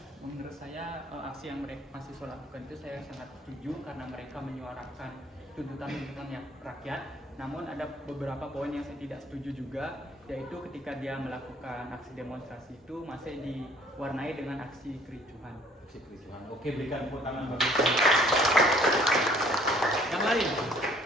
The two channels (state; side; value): normal; both; correlation 0.58